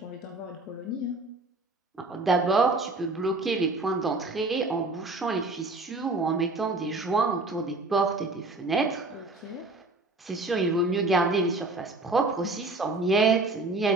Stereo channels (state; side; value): quieter; left; 3.2 dB